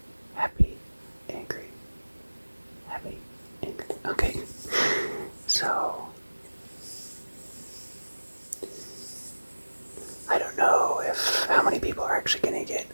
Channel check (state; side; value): inverted; both; correlation -1.00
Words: happy, angry, happy, angry. Okay, so I don't know if how many people are actually going to get